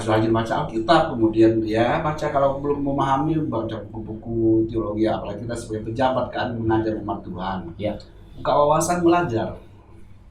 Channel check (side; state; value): both; identical; correlation 1.00